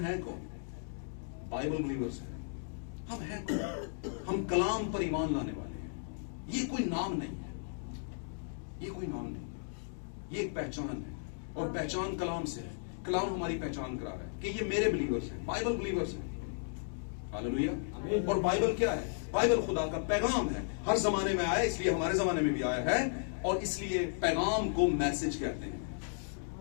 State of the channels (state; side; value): silent; right; digital silence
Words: कौन? बाइबल बिलीवर्स हैं। हम हैं कौन? हम कलाम पर ईमान लाने वाले हैं। ये कोई नाम नहीं है, ये कोई नाम नहीं, ये एक पहचान है, और पहचान कलाम से है। कलाम हमारी पहचान करा रहा है कि ये मेरे बिलीवर्स हैं, बाइबल बिलीवर्स हैं। हालेलुया। और बाइबल क्या है? बाइबल खुदा का पैगाम है, हर जमाने में आया, इसलिए हमारे जमाने में भी आया है, और इसलिए पैगाम को मैसेज कहते हैं।